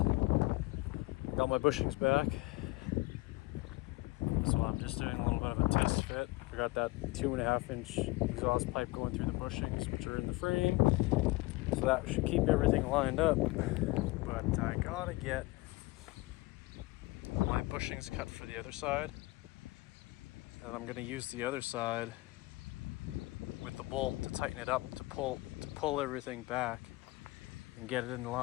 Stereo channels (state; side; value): quieter; right; 22.0 dB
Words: Got my bushings back. So I'm just doing a little bit of a test fit. I got that 2.5 inch exhaust pipe going through the bushings, which are in the frame. So that should keep everything lined up. But I gotta get my bushings cut for the other side. And I'm gonna use the other side with the bolt to tighten it up, to pull everything back and get it in